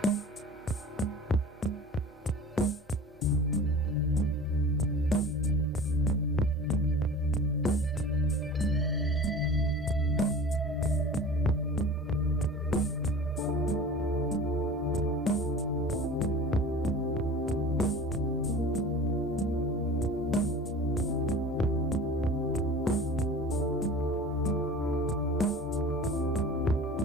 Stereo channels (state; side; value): normal; both; correlation 0.38